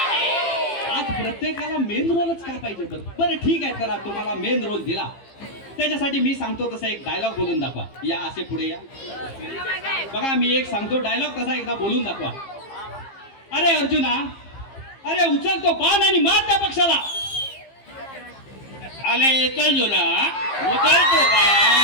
आज प्रत्येकाला मेन रोलच का पाहिजे? बरं बरं, ठीक आहे, चला तुम्हाला मेन रोल दिला, त्याच्यासाठी मी सांगतो तसा एक डायलॉग बोलून दाखवा. या, असे पुढे या. बघा, मी एक सांगतो डायलॉग तसा एकदा बोलून दाखवा. अरे अर्जुना, अरे उचल तो बाण आणि मार त्या पक्षाला. आले चल जुना, उचलतो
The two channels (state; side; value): late; right; 15 ms